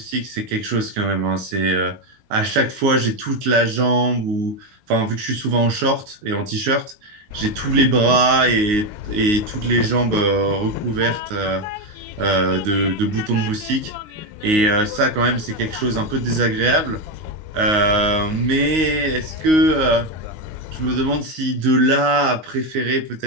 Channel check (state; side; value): late; left; 19 ms